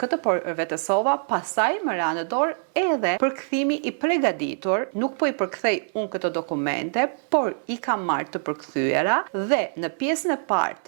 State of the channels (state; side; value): silent; left; 62 dB below the other